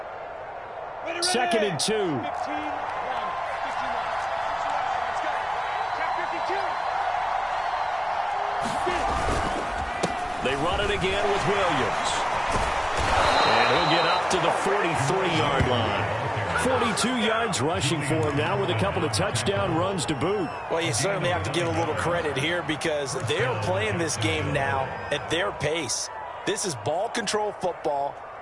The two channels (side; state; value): both; identical; correlation 1.00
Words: 2nd and 2. They run it again with Williams. And he'll get up to the 43-yard line. 42 yards rushing for him now with a couple of touchdown runs to boot. Well, you certainly have to give a little credit here because they're playing this game now at their pace. This is ball control football,